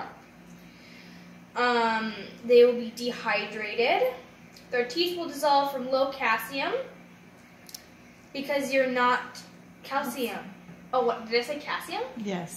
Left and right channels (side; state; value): both; identical; correlation 1.00